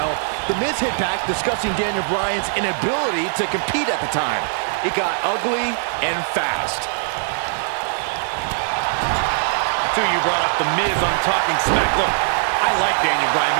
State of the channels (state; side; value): silent; left; 58 dB below the other